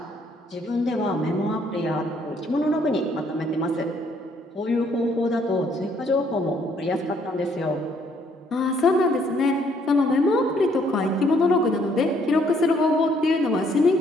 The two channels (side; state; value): both; normal; correlation 0.67